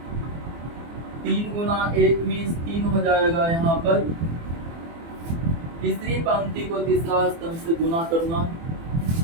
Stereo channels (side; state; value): left; late; 24 ms